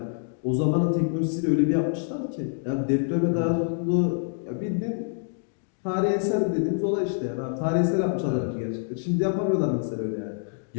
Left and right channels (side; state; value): right; silent; digital silence